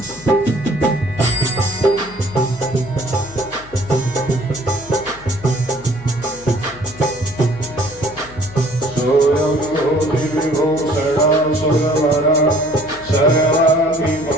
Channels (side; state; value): left; noise; hum, 21 dB below the sound